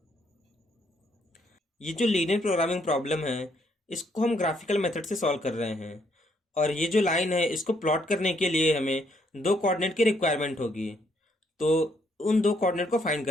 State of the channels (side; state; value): both; normal; correlation 0.71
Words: ये जो लीनियर प्रोग्रामिंग प्रॉब्लम है इसको हम ग्राफिकल मेथड से सॉल्व कर रहे हैं, और ये जो लाइन है इसको प्लॉट करने के लिए हमें दो कोऑर्डिनेट की रिक्वायरमेंट होगी। तो उन दो कोऑर्डिनेट को फाइंड